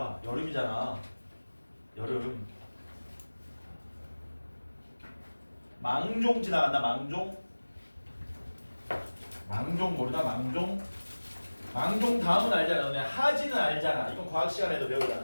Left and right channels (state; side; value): inverted; both; correlation -1.00